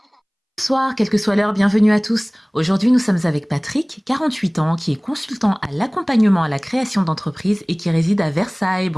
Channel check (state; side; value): identical; both; correlation 1.00